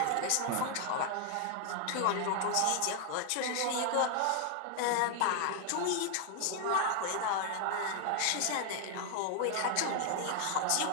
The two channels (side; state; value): both; different; correlation 0.00